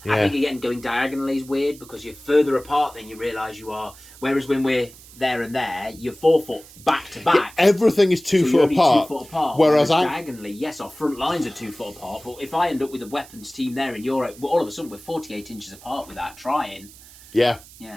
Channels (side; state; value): right; noise; hiss, 21 dB below the sound